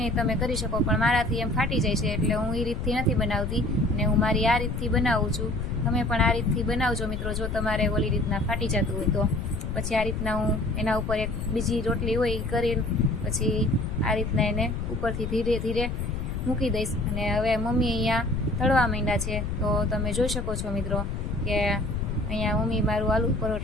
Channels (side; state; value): left; noise; rumble, 3 dB below the sound